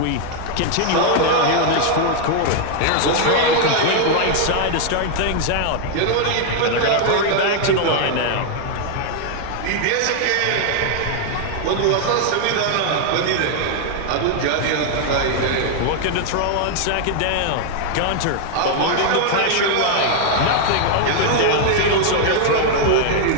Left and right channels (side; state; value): both; different; correlation 0.00